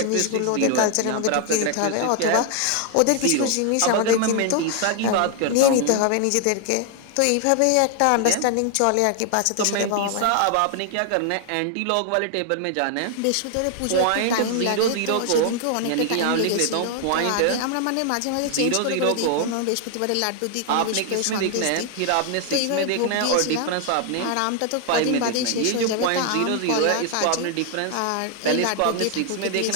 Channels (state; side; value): different; both; correlation 0.00